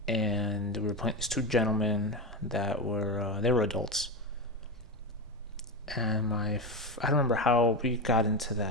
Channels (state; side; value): normal; both; correlation 0.17